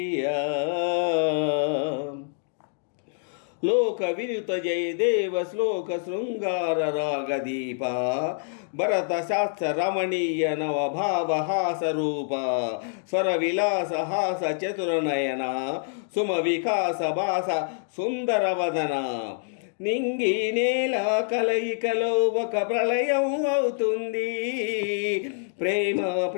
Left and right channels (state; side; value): silent; right; digital silence